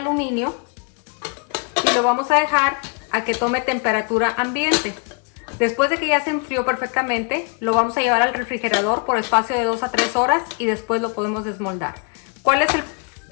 y lo vamos a dejar a que tome temperatura ambiente. Después de que ya se enfrió perfectamente, lo vamos a llevar al refrigerador por espacio de 2 a 3 horas y después lo podemos desmoldar. ¿Cuál es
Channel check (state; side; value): quieter; right; 37.6 dB